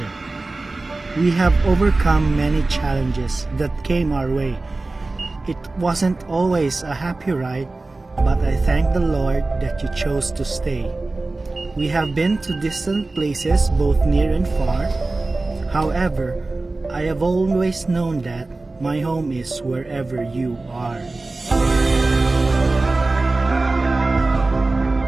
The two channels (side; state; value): left; quieter; 3.2 dB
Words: We have overcome many challenges that came our way. It wasn't always a happy ride, but I thank the Lord that you chose to stay. We have been to distant places both near and far. However, I have always known that my home is wherever you are.